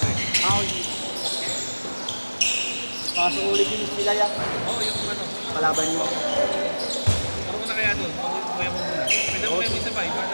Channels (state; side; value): inverted; both; correlation -1.00